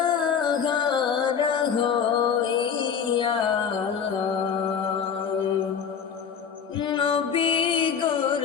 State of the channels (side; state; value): right; quieter; 7.1 dB